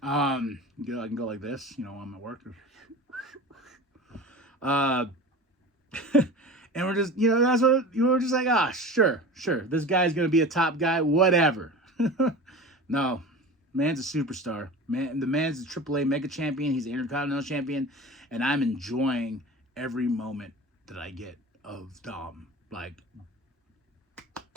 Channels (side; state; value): both; normal; correlation 0.34